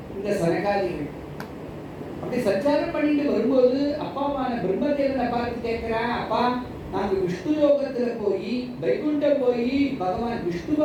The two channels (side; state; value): both; identical; correlation 1.00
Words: இந்த சனகாதிகள். அப்படி சஞ்சாரம் பண்ணிட்டு வரும்போது அப்பாவான பிரம்மதேவனை பார்த்து கேட்கிறா, அப்பா நாங்க விஷ்ணு லோகத்துல போய் வைகுண்டம் போய் பகவான்